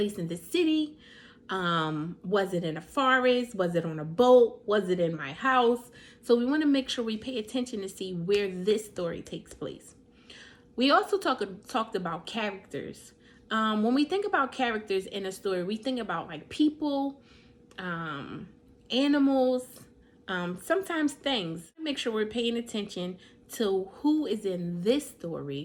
in the city? Was it in a forest? Was it on a boat? Was it in my house? So we want to make sure we pay attention to see where this story takes place. We also talked about characters. When we think about characters in a story, we think about like people, animals, sometimes things. Make sure we're paying attention to who is in this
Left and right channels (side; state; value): both; identical; correlation 1.00